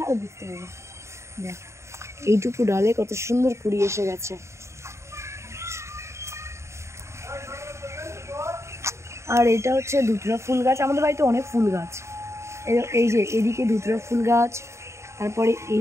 আর বুঝতে পারবে, দেখ এইটুকু ডালে কত সুন্দর কুড়ি এসে গেছে। আর এটা হচ্ছে ধুতরা ফুল গাছ, আমাদের বাড়িতে অনেক ফুল গাছ। এই যে এদিকে ধুতরা ফুল গাছ, তারপরে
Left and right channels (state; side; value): late; left; 0.14 ms